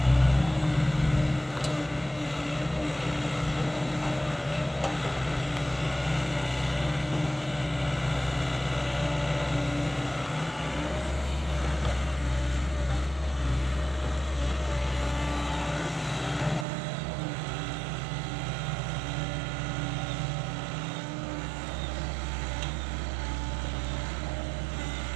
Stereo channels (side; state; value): left; drops out; at 16.7 s